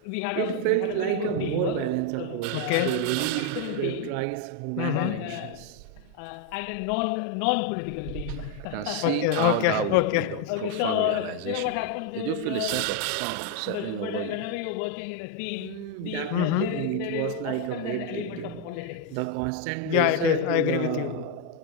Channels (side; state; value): both; different; correlation 0.02